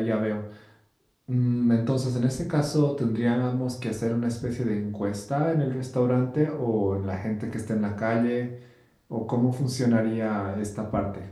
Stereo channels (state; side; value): identical; both; correlation 1.00